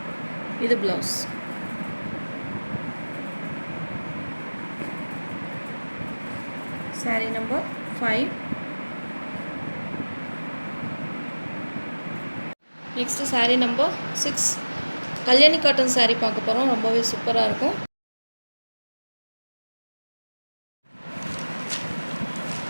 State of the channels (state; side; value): inverted; both; correlation -1.00